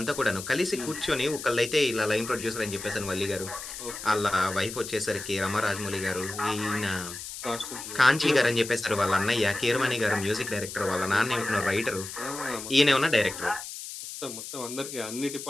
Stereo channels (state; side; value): noise; left; hiss, 10 dB below the sound